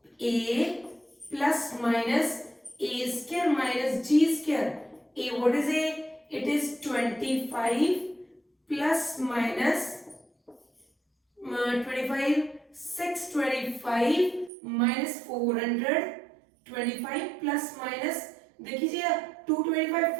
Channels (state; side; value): drops out; left; at 14.5 s